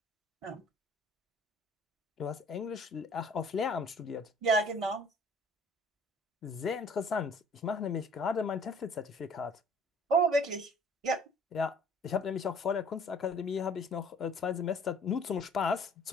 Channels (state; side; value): normal; both; correlation 0.54